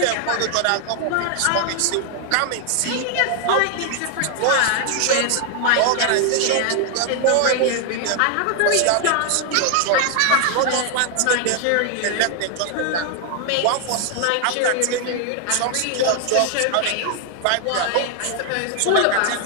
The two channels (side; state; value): both; different; correlation 0.00